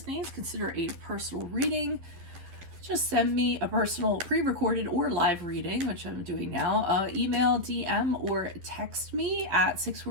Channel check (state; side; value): late; left; 12 ms